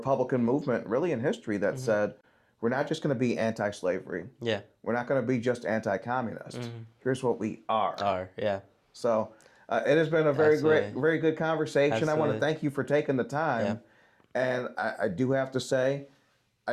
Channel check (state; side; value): identical; both; correlation 1.00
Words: movement, really in history, that said, we're not just going to be anti-slavery. Yeah. We're not going to be just anti-communist. Here's what we are. Yeah. So it has been a very Absolutely. very good conversation. I want to Absolutely. thank you for taking the time. And I do have to say,